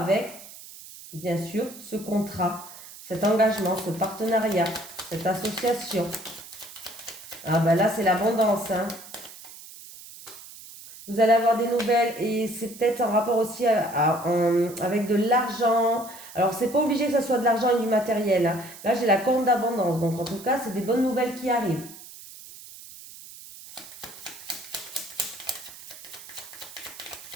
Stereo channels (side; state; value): right; noise; hiss, 16 dB below the sound